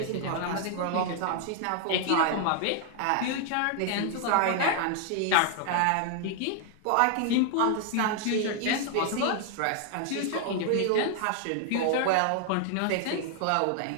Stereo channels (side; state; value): both; different; correlation 0.00